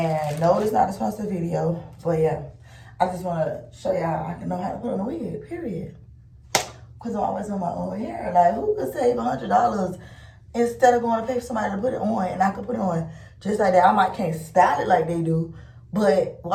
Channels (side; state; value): both; identical; correlation 1.00